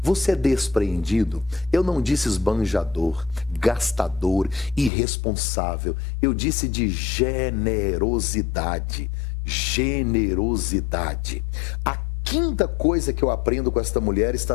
Você é despreendido? Eu não disse esbanjador, gastador, irresponsável. Eu disse de generosidade. Generosidade. A quinta coisa que eu aprendo com esta mulher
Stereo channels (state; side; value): drops out; right; at 4.9 s